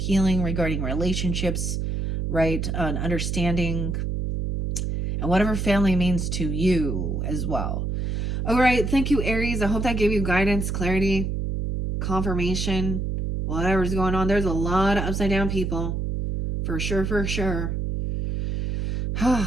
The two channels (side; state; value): right; noise; hum, 1 dB below the sound